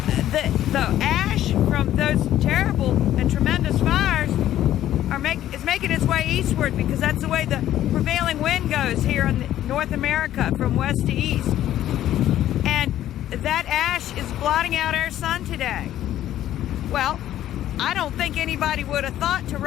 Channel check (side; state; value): right; quieter; 12.5 dB